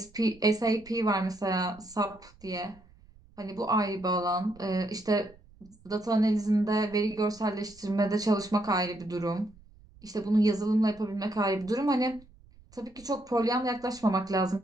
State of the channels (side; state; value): right; noise; rumble, 26 dB below the sound